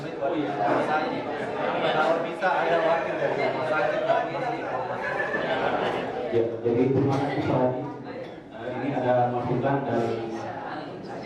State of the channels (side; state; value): both; identical; correlation 1.00